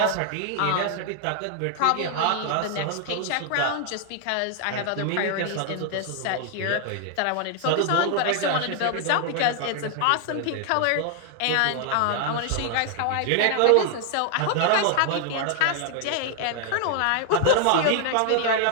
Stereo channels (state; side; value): different; both; correlation 0.00